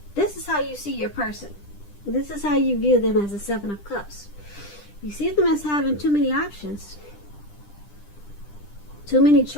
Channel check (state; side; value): late; right; 10 ms